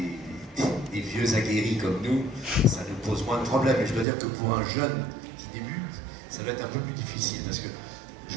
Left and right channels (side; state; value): left; drops out; at 4.0 s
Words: des vieux aguerris comme nous, ça nous pose moins de problèmes. Et je dois dire que pour un jeune qui débute, ça va être un peu plus difficile, parce que